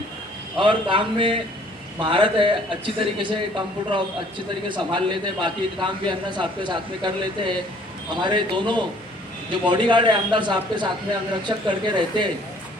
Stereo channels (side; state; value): both; normal; correlation 0.58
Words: और काम में महारत है, अच्छी तरीके से कंप्यूटर अच्छी तरीके से संभाल लेते हैं। बाकी काम भी अन्ना साहब के साथ में कर लेते हैं। हमारे दोनों जो बॉडीगार्ड है आमदार साहब के साथ में अंगरक्षक करके रहते हैं,